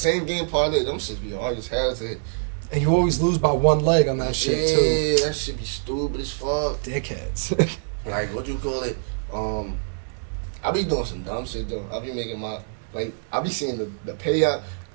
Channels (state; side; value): silent; left; digital silence